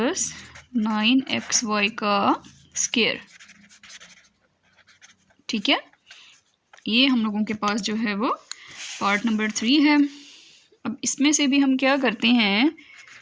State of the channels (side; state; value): both; identical; correlation 1.00